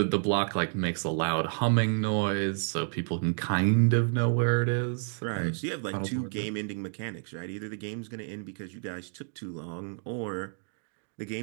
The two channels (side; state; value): left; silent; digital silence